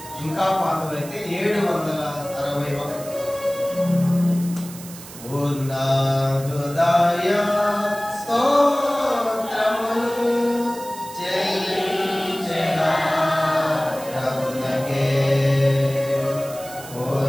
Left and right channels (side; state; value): right; noise; hiss, 15 dB below the sound